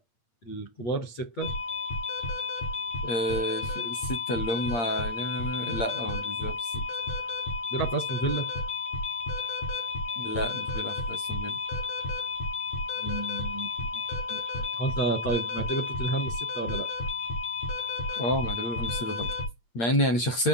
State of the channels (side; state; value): right; late; 8.6 ms